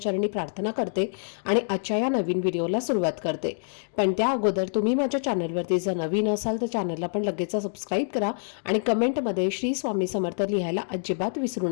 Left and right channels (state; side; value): silent; right; digital silence